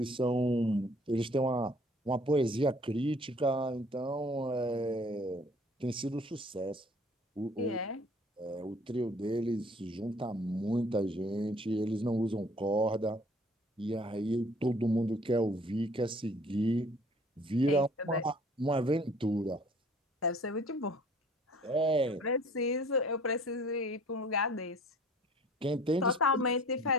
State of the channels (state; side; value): normal; both; correlation 0.53